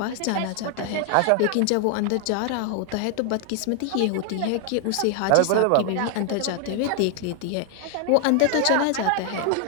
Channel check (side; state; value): both; different; correlation 0.00